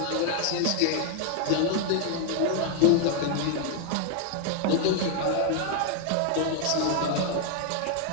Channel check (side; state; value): both; different; correlation 0.00